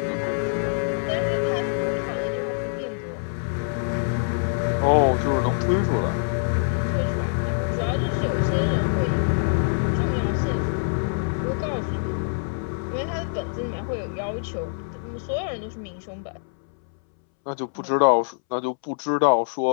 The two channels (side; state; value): right; silent; 62 dB below the other